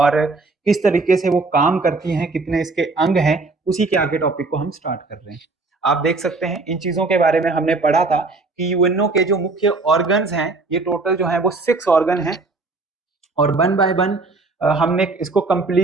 किस तरीके से वो काम करती हैं, कितने इसके अंग हैं। उसी के आगे टॉपिक को हम स्टार्ट कर रहे हैं। आप देख सकते हैं इन चीजों के बारे में हमने पढ़ा था कि यूएनओ के जो मुख्य ऑर्गन्स हैं, ये टोटल जो है वो 6 ऑर्गन हैं और वन बाय वन हमने इसको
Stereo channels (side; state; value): left; quieter; 3.6 dB